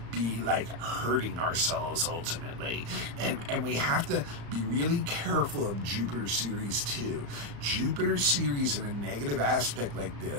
be like hurting ourselves ultimately. And we have to be really careful of Jupiter series too. Jupiter series in a negative aspect like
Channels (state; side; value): late; left; 35 ms